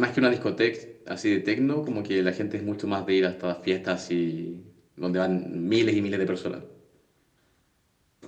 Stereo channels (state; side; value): identical; both; correlation 1.00